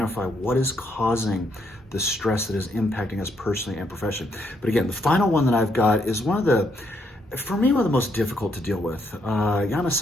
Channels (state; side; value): normal; both; correlation 0.74